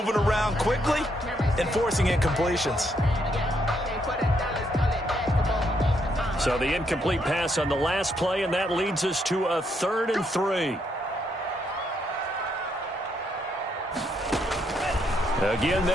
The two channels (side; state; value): both; normal; correlation 0.75